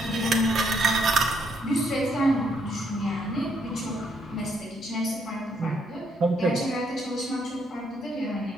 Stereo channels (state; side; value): normal; both; correlation 0.73